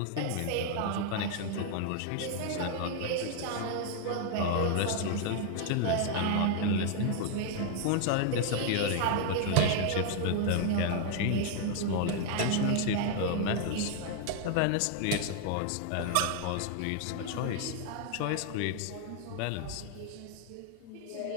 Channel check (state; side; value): different; both; correlation 0.00